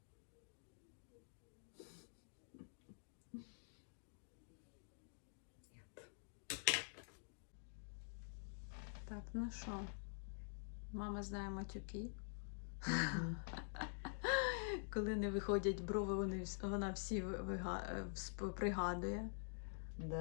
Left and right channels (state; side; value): silent; right; digital silence